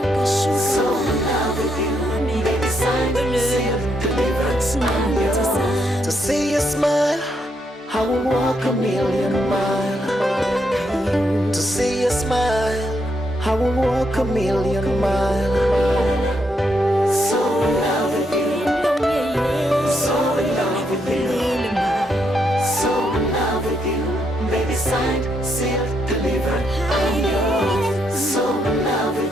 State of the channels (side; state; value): both; normal; correlation 0.77